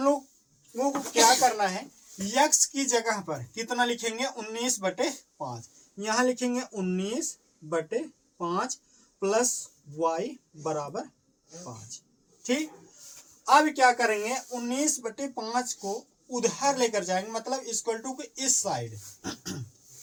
लोगों को क्या करना है, यक्स की जगह पर कितना लिखेंगे 19 बटे 5, यहां लिखेंगे 19 बटे 5 प्लस वाई बराबर 5। ठीक, अब क्या करेंगे 19 बटे 5 को उधर लेकर जाएंगे, मतलब इक्वल टू इस साइड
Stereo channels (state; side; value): identical; both; correlation 1.00